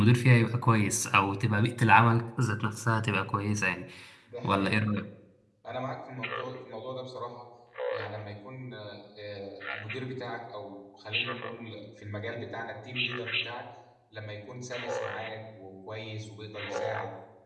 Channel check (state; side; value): identical; both; correlation 1.00